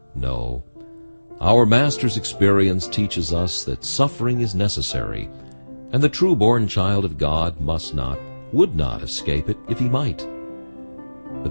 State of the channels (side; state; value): both; inverted; correlation -1.00